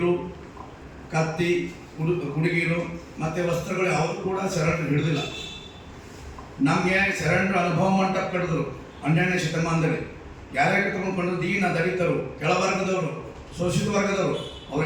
ಕತ್ತಿ, ಕುಡುಗಿಲು ಮತ್ತು ವಸ್ತ್ರಗಳು ಯಾವುದು ಕೂಡ ಶರಣರು ಹಿಡಿದಿಲ್ಲ. ನಮಗೆ ಶರಣರು ಅನುಭವ ಮಂಟಪ ಕಟ್ಟಿದ್ರು 12ನೇ ಶತಮಾನದಲ್ಲಿ. ಯಾರ್ಯಾರು ಕರ್ಕೊಂಡು ದೀನ ದಲಿತರು, ಕೆಳವರ್ಗದವರು, ಶೋಷಿತ ವರ್ಗದವರು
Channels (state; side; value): identical; both; correlation 1.00